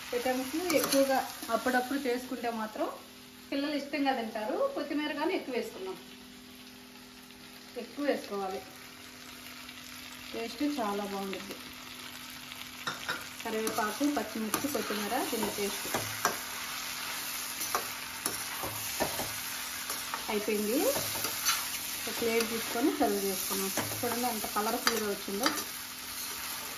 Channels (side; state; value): both; identical; correlation 1.00